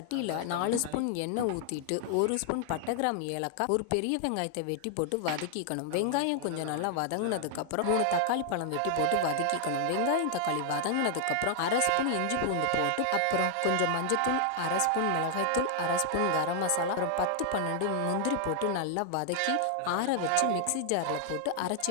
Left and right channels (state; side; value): different; both; correlation 0.00